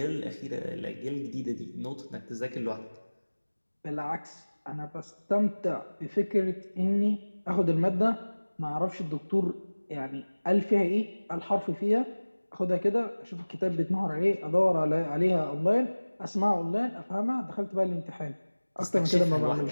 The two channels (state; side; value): inverted; both; correlation -1.00